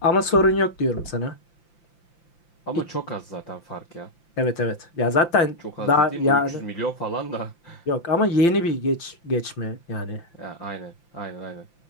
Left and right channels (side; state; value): right; late; 5.8 ms